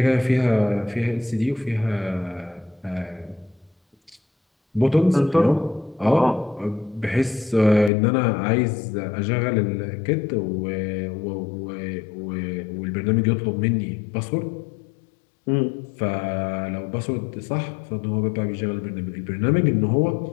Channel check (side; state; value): right; drops out; at 7.9 s